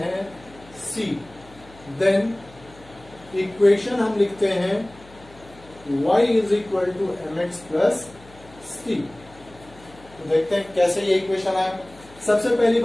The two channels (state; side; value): noise; left; hum, 24 dB below the sound